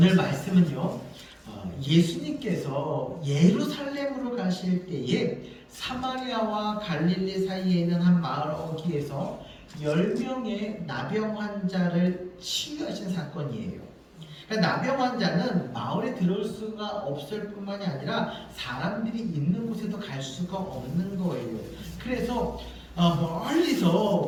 말씀은요, 예수님께서 예루살렘으로 가실 때에 사마리아와 갈릴리 사이에 있는 한 마을 어귀에서 10명의 나병 환자를 치유하신 사건이에요. 그러니까 나병 환자는 마을에 들어올 수가 없을 뿐만이 아니라 사람들이 있는 곳에도 갈 수가 없는 거예요. 그래서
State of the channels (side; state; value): both; identical; correlation 1.00